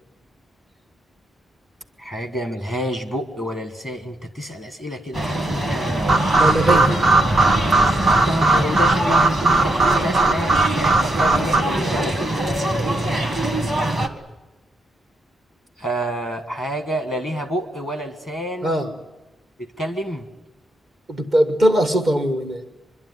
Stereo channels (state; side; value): normal; both; correlation 0.80